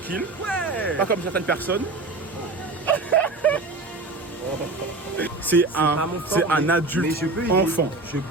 Ouais. Pas comme certaines personnes. C'est pas mon fort, un mais adulte je peux aider. enfant. Je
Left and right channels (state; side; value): quieter; left; 3.3 dB